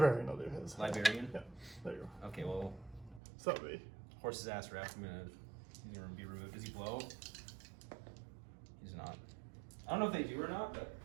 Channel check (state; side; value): drops out; left; at 3.2 s